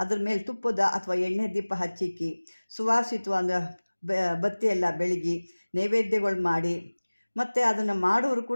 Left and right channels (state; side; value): inverted; both; correlation -1.00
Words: ಅದ್ರ ಮೇಲೆ ತುಪ್ಪದ ಅಥವಾ ಎಣ್ಣೆ ದೀಪ ಹಚ್ಚಿಕ್ಕಿ ಸುವಾಸಿತವಾದ ಬತ್ತಿ ಎಲ್ಲ ಬೆಳಗಿ ನೈವೇದ್ಯಗಳು ಮಾಡಿ, ಮತ್ತು ಅದನ್ನು ಮಾಡೋರು